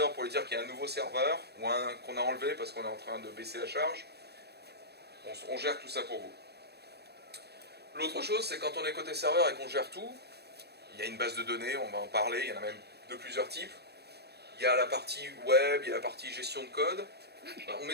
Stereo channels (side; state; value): left; late; 0.47 ms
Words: pour lui dire qu'il y a un nouveau serveur, ou un qu'on a enlevé parce qu'on est en train de baisser la charge. On gère tout ça pour vous. L'autre chose, c'est quand on est côté serveur et qu'on gère tout, il y a une base de données, on va en parler, il y en a même de plusieurs types. Il y a la partie web, il y a la partie gestion de code. On